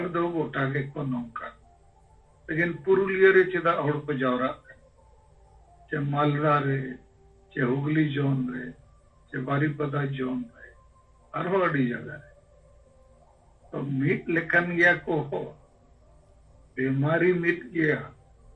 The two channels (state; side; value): identical; both; correlation 1.00